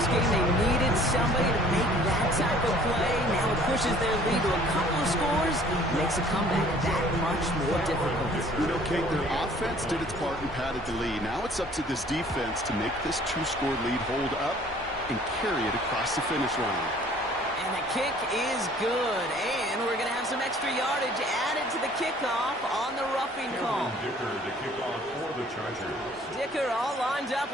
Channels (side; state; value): both; normal; correlation 0.55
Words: game, they needed somebody to make that type of play. Now it pushes their lead to a couple of scores. Makes a comeback that much more difficult. You know, Kate, their offense did its part and padded the lead. Now it's up to this defense to make this 2-score lead hold up and carry it across the finish line. And the kick is good. And we're going to have some extra yardage added to the kickoff on the roughing call. Dicker to kick off for the Chargers. Dicker all lined up